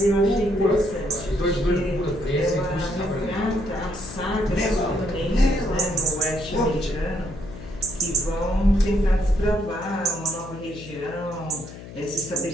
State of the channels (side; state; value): left; noise; hum, 14 dB below the sound